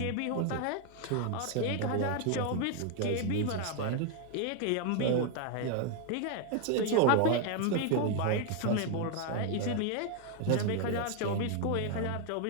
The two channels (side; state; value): both; different; correlation 0.01